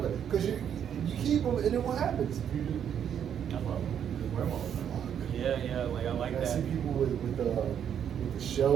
back because you keep them, and then what happens? I love them. Wear them all the time. Yeah. Like I like that. I see people with the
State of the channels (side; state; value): left; quieter; 8.8 dB